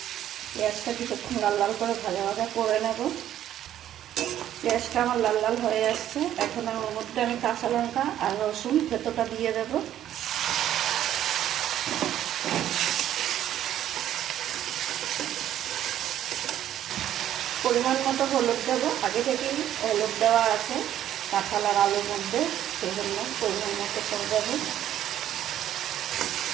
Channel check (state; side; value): quieter; left; 11.6 dB